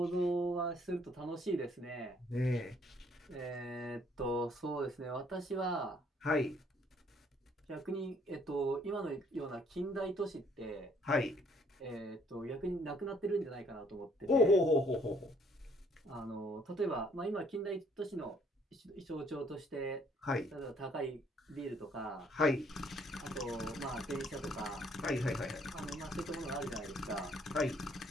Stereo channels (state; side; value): normal; both; correlation 0.64